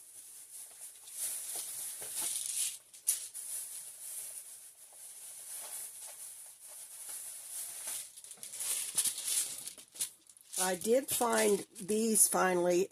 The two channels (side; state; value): both; identical; correlation 1.00